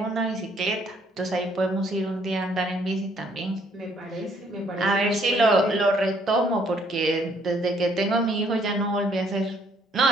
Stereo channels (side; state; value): both; normal; correlation 0.66